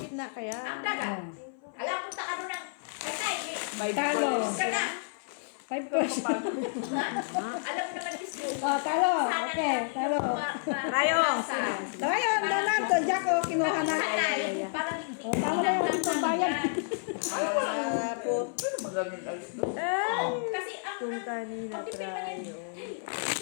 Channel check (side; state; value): right; silent; 55 dB below the other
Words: kaya? ang dagat. Alam ko sa ano ng tide. By Talo. Ka na. 5 person. Alam mo naman, Miss Yu. Oh, talo. Okay, talo. Trayo. Tayo, Donato, Jack, oh, kinuha na. Parang Oh, talo na yung itong bayan. kasi ang Kung kanina, trayo.